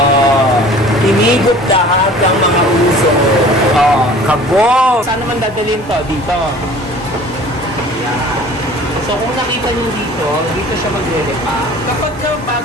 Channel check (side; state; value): both; normal; correlation 0.46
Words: Tinigop lahat ng mga uso. Oh, kabog! Saan naman dadalhin to? Dito. Ayan. So kung nakita nyo dito, dito siya maglilipa. Kapag